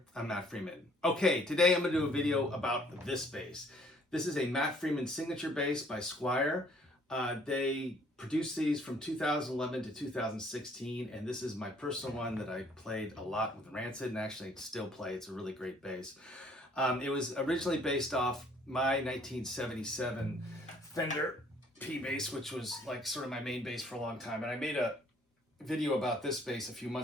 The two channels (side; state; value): both; normal; correlation 0.60